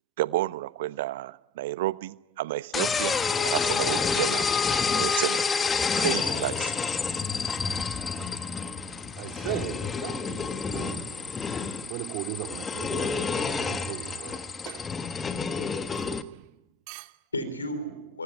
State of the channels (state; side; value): normal; both; correlation 0.49